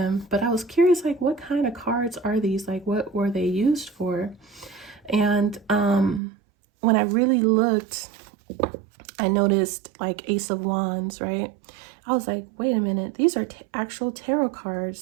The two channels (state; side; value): drops out; left; at 6.2 s